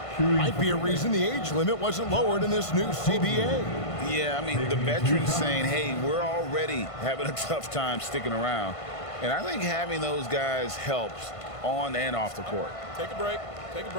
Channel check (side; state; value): right; late; 1.5 ms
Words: Might be a reason the age limit wasn't lowered in this new CBA. Yeah, I mean, the veterans saying, hey, we're already having a tough time sticking around. And I think having those guys helps on and off the court. Take a break. Take a